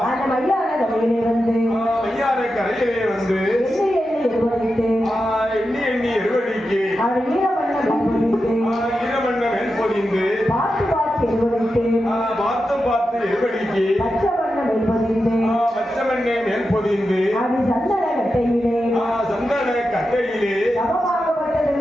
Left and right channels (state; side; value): normal; both; correlation 0.90